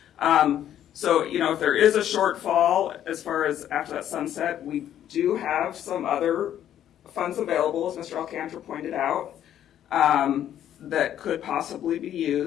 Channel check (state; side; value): quieter; right; 10.8 dB